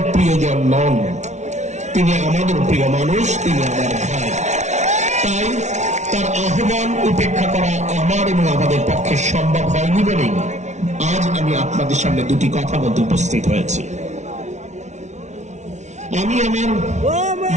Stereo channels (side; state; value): left; late; 0.33 ms